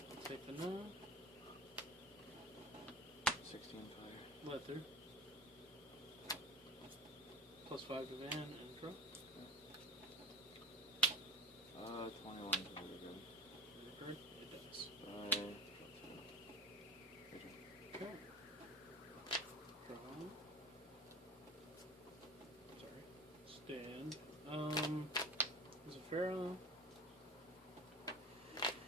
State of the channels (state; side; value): normal; both; correlation 0.30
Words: Take the 9. 16 fire. Let through. +5 to Van and draw. 21 is really good. Record. It does. Okay. Draw. Sorry. Stand. There's a Farah.